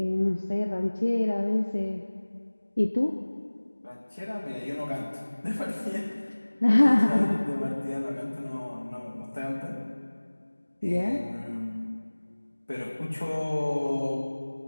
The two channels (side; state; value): both; inverted; correlation -1.00